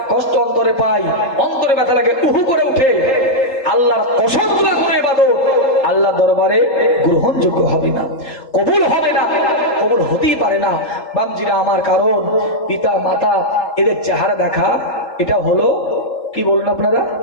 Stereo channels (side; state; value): right; late; 3.8 ms